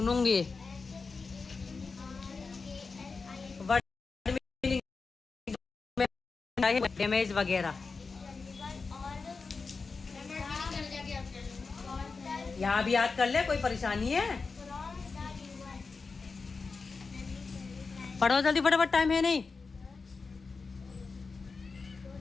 डैमेज वगैरह यहाँ भी याद कर ले, कोई परेशानी है? पढ़ो जल्दी फटाफट, टाइम है नहीं।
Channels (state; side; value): quieter; right; 4.5 dB